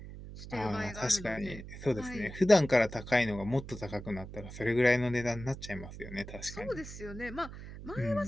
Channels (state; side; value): noise; right; hum, 12 dB below the sound